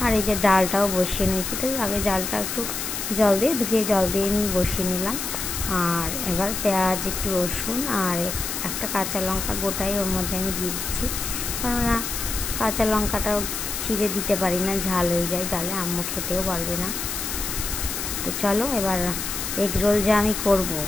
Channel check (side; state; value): left; noise; hiss, 4 dB below the sound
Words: আর এই যে ডালটাও বসিয়ে নিয়েছি। তো আগে ডালটা একটু জল দিয়ে ধুয়ে জল দিয়ে আমি বসিয়ে নিলাম। আর এবার পেঁয়াজ, একটু রসুন আর একটা কাঁচা লঙ্কা গোটাই ওর মধ্যে আমি দিয়ে দিচ্ছি, কেননা কাঁচা লঙ্কাটাও ছিঁড়ে দিতে পারি না, ঝাল হয়ে যায় ডালে, আম্মু খেতেও পারবে না। তো চলো এবার এগ রোল যা আমি করব